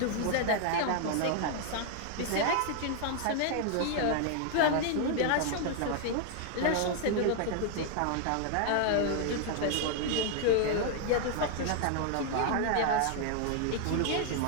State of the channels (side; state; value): both; different; correlation 0.00